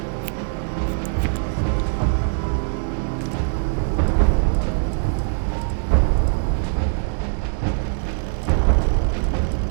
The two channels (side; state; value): left; silent; 64 dB below the other